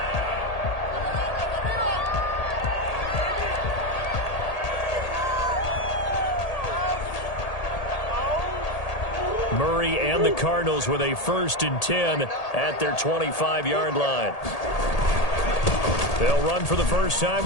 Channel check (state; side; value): late; right; 1.8 ms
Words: Murray and the Cardinals with a 1st and 10 at their 25-yard line. They'll run for the first time